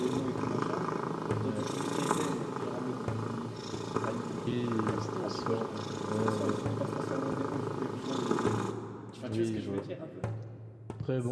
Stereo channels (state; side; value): identical; both; correlation 1.00